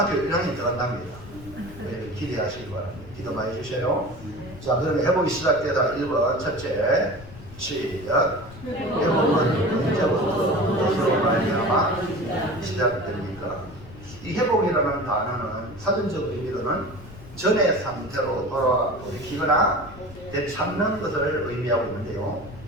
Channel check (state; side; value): noise; left; rumble, 17 dB below the sound